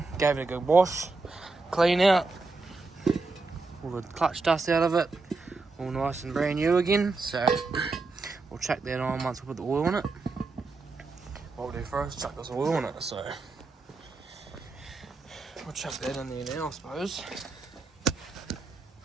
gave it a good wash, clean out, all the clutch dust out of it, all nice and brand new again. So we'll chuck that on once we put the oil in it. What we'll do first, chuck this oil in it. So we'll chuck that in there now, I suppose.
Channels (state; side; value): quieter; left; 3.7 dB